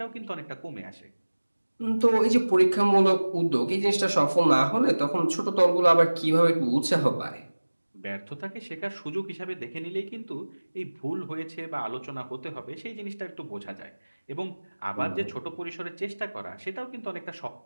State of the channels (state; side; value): inverted; both; correlation -1.00